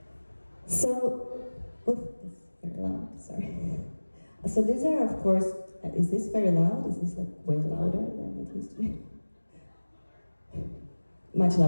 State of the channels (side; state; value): both; inverted; correlation -1.00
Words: So, oof, this is very loud, sorry. So these are, of course, is this very loud? Is this like way louder than it used to be? Much